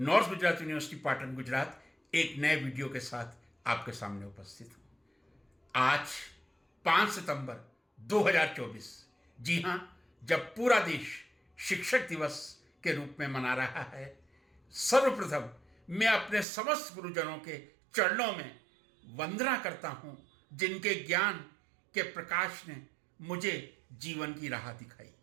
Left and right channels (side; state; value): left; drops out; at 16.4 s